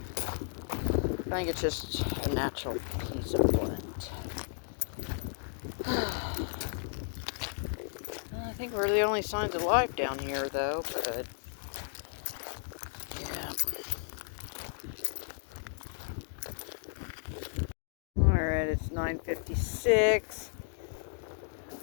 I think it's just a natural piece of flint. I think we're the only signs of life down here, though, but yeah. Alright, it's 9:56. I'll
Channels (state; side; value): silent; right; digital silence